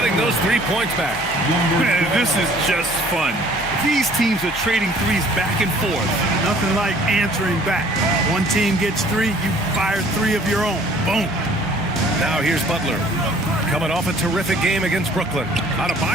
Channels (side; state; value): both; normal; correlation 0.55